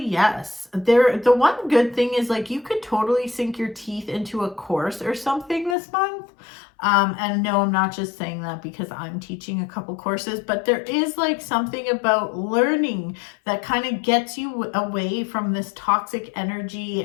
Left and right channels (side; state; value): right; drops out; at 5.8 s